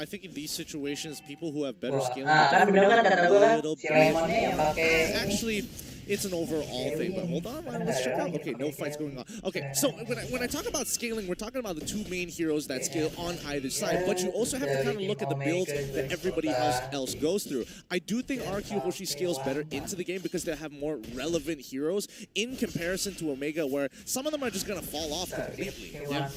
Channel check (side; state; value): both; identical; correlation 1.00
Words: think in these situations, people who have better Wah, scaling kan bener kan kata gue kan little si bit. Lemonnya yang pakai Actually, it's an overall thing, but hold on, let's check out. Okay, no fights going on. Okay, so when I talk about scaling, we're talking about the two main heroes that scale on either side, but you also have to kind of look at the builds that everybody else goes through. I do think RRQ Hoshi scales better into the game because they have more relevant heroes in comparison to Omega, where some of them are just going to fall off completely.